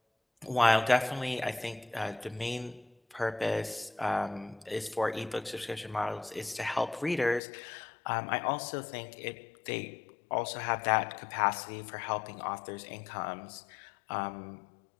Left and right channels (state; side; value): drops out; right; at 7.4 s